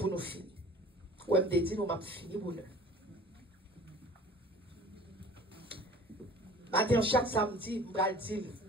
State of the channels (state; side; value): normal; both; correlation 0.45